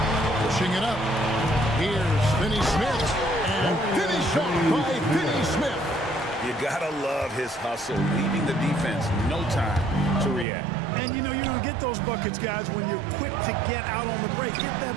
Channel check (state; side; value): drops out; left; at 10.5 s